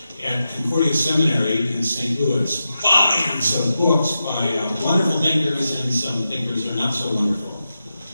At Concordia Seminary in St. Louis, volumes of books by wonderful thinkers, and some thinkers are not so wonderful.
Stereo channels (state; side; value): inverted; both; correlation -0.89